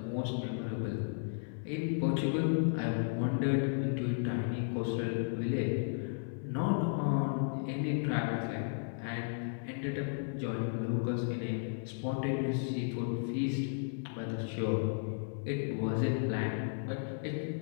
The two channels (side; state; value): right; silent; 55 dB below the other